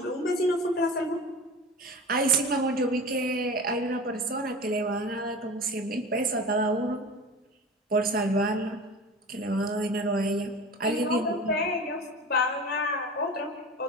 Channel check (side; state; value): both; normal; correlation 0.35